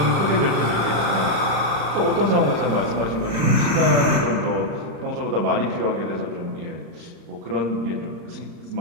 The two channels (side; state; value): left; late; 35 ms